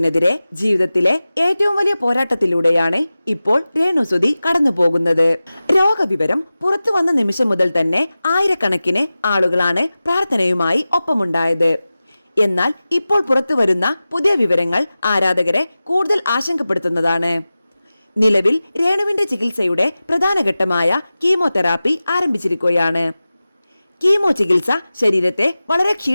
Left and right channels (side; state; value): both; inverted; correlation -0.96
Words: ജീവിതത്തിലെ ഏറ്റവും വലിയ പോരാട്ടത്തിലൂടെയാണ് ഇപ്പോൾ രേണുസുതി കടന്നു പോകുന്നത്. രോഗവിവരം പുറത്തു വന്ന നിമിഷം മുതൽ തന്നെ ആയിരക്കണക്കിന് ആളുകളാണ് പ്രാർത്ഥനയുമായി ഒപ്പമുണ്ടായത്. എന്നാൽ ഇപ്പോൾ പുറത്തു വരുന്ന പുതിയ വിവരങ്ങൾ ആരാധകരെ കൂടുതൽ ആശങ്കപ്പെടുത്തുന്നതാണ്. നിലവിൽ രേണുവിന്റെ ചികിത്സയുടെ പ്രധാന ഘട്ടമായ കീമോതെറാപ്പി ആരംഭിച്ചിരിക്കുകയാണ്. കീമോ ചികിത്സ ശരീരത്തെ വളരെ